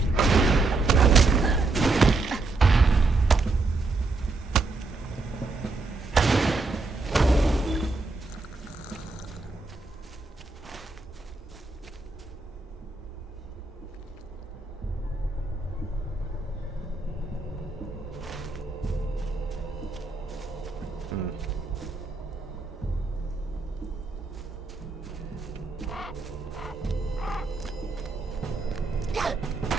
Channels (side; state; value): left; quieter; 3.6 dB